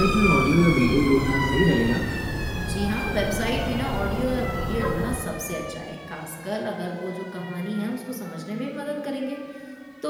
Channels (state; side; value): identical; both; correlation 1.00